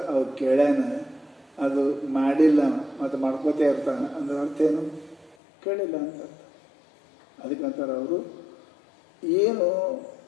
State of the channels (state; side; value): drops out; right; at 5.4 s